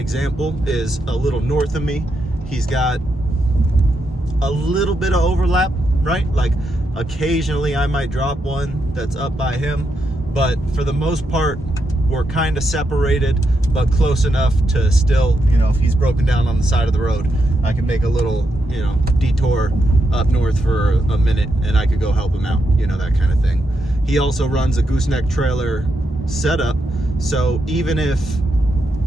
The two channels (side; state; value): both; normal; correlation 0.83